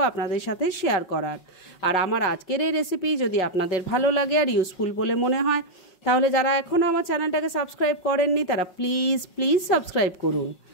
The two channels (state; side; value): late; right; 5.5 ms